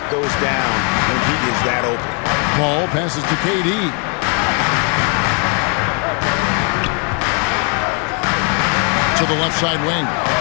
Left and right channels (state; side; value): quieter; right; 37.5 dB